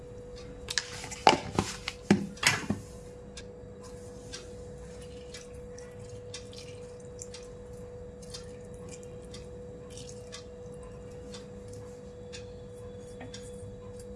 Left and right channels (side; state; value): both; identical; correlation 1.00